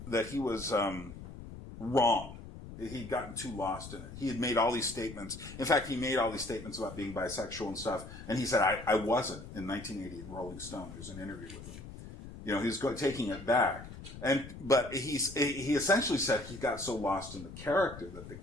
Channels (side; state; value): left; noise; rumble, 13 dB below the sound